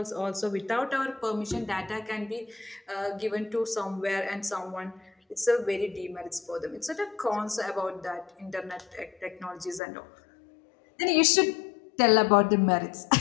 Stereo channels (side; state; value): right; drops out; at 9.8 s